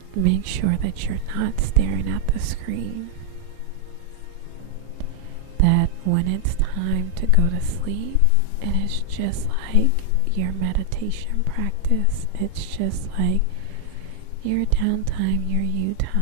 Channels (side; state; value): both; different; correlation -0.01